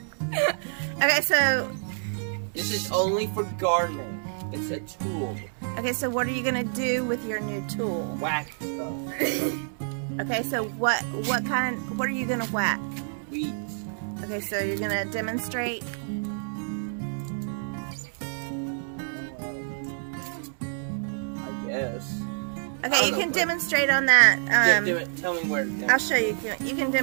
Okay, so This is only for gardening. It's a tool. okay, so what are you gonna do with your new tool? Whack stuff. Okay, so what are you gonna whack? Weeds. Okay, so you're gonna demonstrate. I guess. Okay, you can demonstrate on that. Tell me where to go. I'll show you. You can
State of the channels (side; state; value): left; silent; digital silence